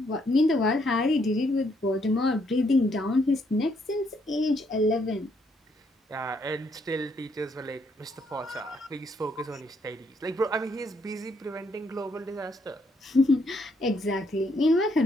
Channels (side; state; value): both; normal; correlation 0.72